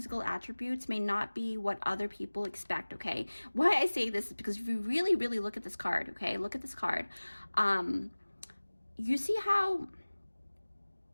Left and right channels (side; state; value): both; inverted; correlation -1.00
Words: attributes may not be what other people expect, okay? Why I say this is because if you really look at this card, okay? Look at this card. You see how